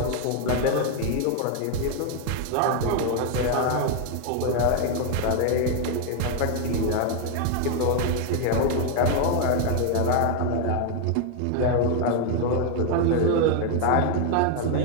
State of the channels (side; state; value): both; different; correlation 0.01